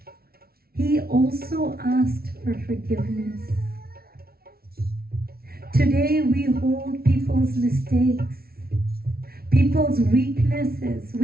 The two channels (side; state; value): left; late; 0.44 ms